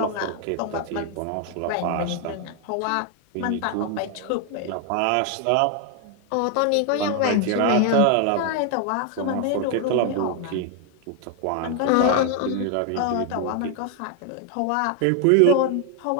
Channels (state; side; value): different; both; correlation 0.00